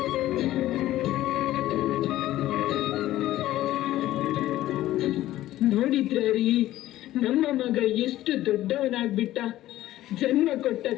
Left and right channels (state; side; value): quieter; right; 14.8 dB